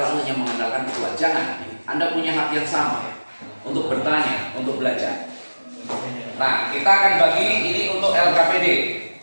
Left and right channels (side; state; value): both; inverted; correlation -1.00